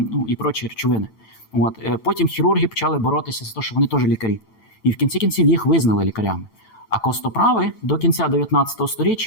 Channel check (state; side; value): late; right; 9.0 ms